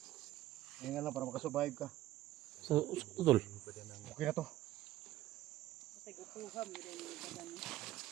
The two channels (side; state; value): left; quieter; 14.7 dB